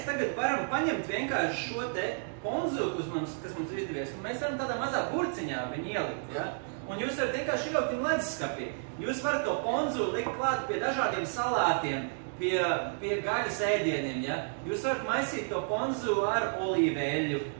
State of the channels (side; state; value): left; silent; digital silence